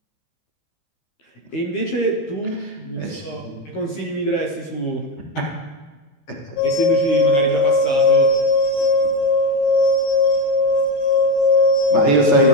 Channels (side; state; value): right; late; 14 ms